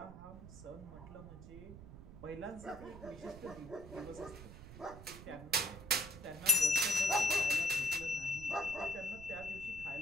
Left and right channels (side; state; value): right; noise; rumble, 14 dB below the sound